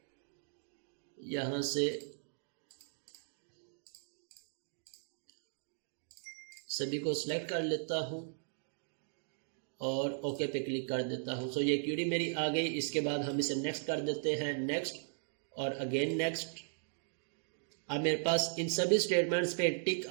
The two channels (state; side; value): silent; left; digital silence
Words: यहाँ से सभी को सिलेक्ट कर लेता हूँ और ओके पे क्लिक कर देता हूँ। सो ये क्यूरी मेरी आ गई। इसके बाद हम इसे नेक्स्ट कर देते हैं, नेक्स्ट और अगेन नेक्स्ट। अब मेरे पास इन सभी स्टेटमेंट्स पे टिक